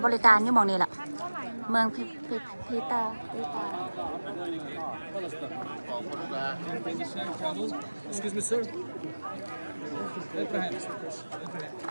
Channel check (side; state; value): both; inverted; correlation -1.00